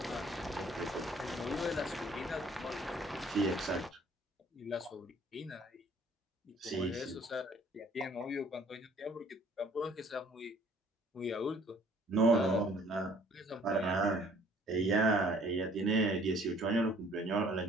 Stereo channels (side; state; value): both; normal; correlation 0.58